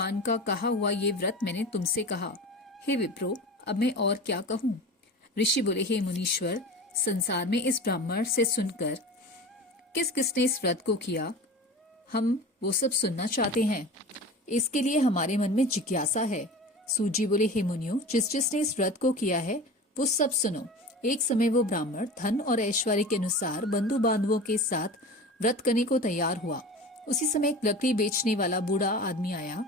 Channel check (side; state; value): both; normal; correlation 0.33